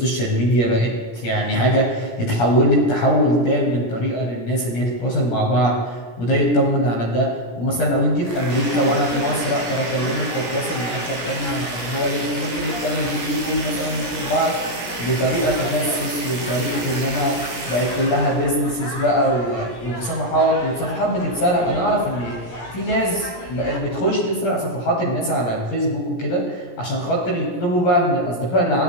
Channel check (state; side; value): late; right; 17 ms